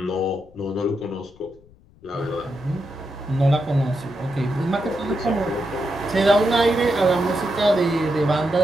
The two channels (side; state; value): left; noise; rumble, 27 dB below the sound